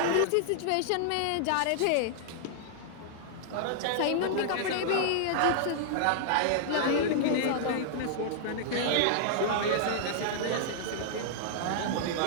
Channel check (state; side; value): different; both; correlation -0.01